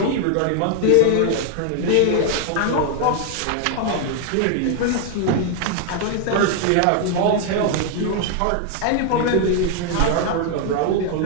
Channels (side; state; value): both; different; correlation 0.00